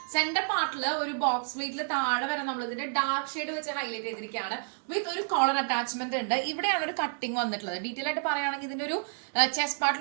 സെന്റർ പാർട്ടിൽ ഒരു ബോക്സ് പ്ലേറ്റിൽ താഴെ വരെ നമ്മൾ ഇതിന്റെ ഡാർക്ക് ഷെയ്ഡ് വെച്ച് ഹൈലൈറ്റ് ചെയ്തിരിക്കുകയാണ്. വിത്ത് ഒരു കോളർ അറ്റാച്ച്മെന്റ് ഉണ്ട്. ഇവിടെയാണ് ഒരു കട്ടിങ് വന്നിട്ടുള്ളത്. ഡീറ്റെയിൽ ആയിട്ട് പറയുകയാണെങ്കിൽ ഇതിന്റെ ഒരു ചെസ്റ്റ്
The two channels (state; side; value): silent; left; digital silence